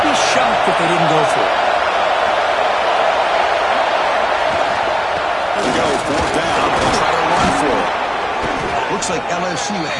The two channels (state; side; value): identical; both; correlation 1.00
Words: be shocked if they didn't go for it. Here we go, 4th down. They'll try to run for it. Looks like LSU